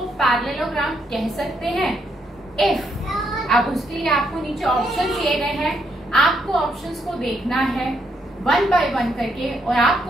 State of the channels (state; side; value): normal; both; correlation 0.76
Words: पैरेललोग्राम कह सकते हैं? इफ। अब उसके लिए आपको नीचे ऑप्शन दिए गए हैं, आपको ऑप्शंस को देखना है 1 बाय 1 करके और